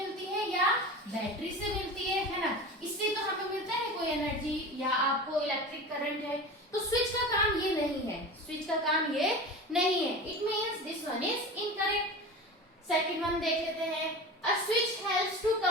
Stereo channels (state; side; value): normal; both; correlation 0.31